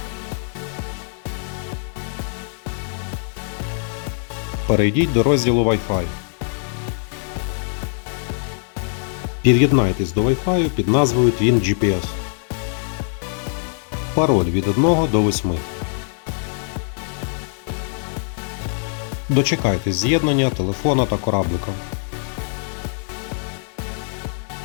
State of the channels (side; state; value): right; silent; digital silence